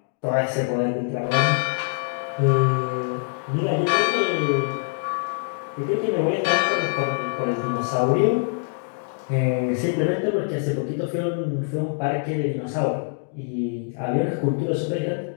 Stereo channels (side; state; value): right; silent; digital silence